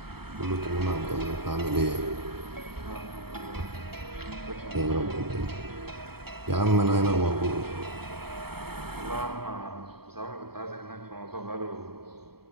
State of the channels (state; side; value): late; left; 0.96 ms